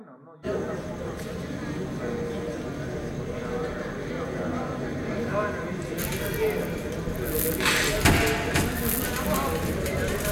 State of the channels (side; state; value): both; identical; correlation 1.00